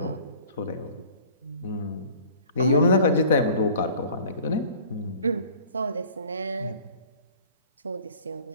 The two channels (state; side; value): inverted; both; correlation -0.48